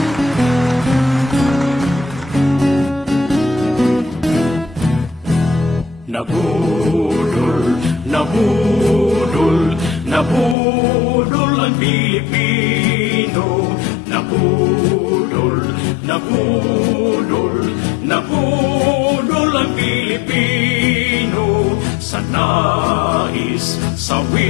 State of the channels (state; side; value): drops out; right; at 10.6 s